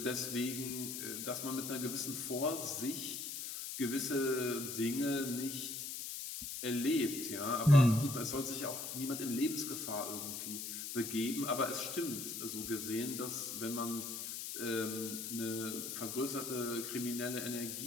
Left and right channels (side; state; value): left; noise; hiss, 5 dB below the sound